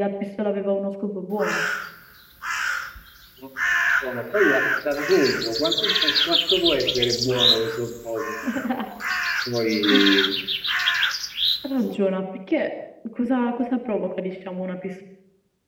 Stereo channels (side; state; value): both; identical; correlation 1.00